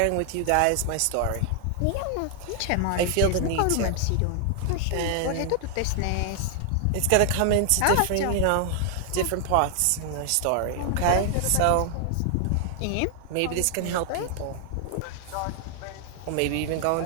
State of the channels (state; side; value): different; both; correlation 0.00